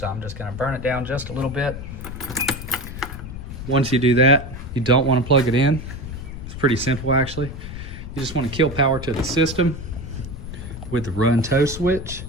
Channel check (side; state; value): left; noise; rumble, 10 dB below the sound